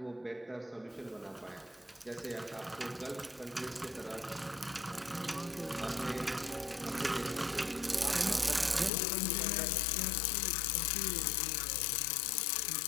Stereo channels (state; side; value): drops out; right; at 8.9 s